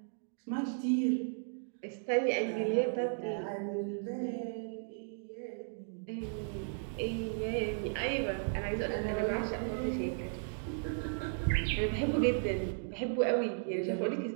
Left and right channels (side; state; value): left; silent; digital silence